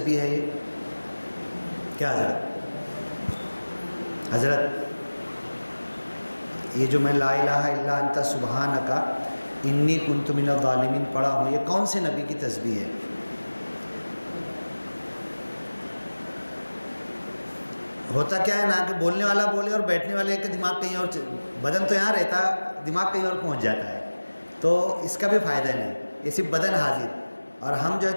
ہے یہ؟ کیا حضرت یہ جو میں لا الہ الا انت سبحانک انی کنت من الظالمین پڑھا ہوں، یہ کون سے نبی کی تسبیح ہے؟ ہوتا کیا ہے نا کہ بولنے والا بولے اور بیٹھنے والے کا دماغ کہیں اور، بدن تو یہاں رہتا دماغ کہیں اور پہنچ جاتا ہے، تو اس کا بھی فائدہ نہیں. یہ صرف بدن حاضر، اور ہم جو ہے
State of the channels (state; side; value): inverted; both; correlation -1.00